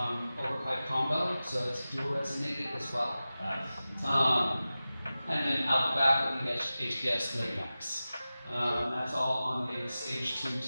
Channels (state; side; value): inverted; both; correlation -0.95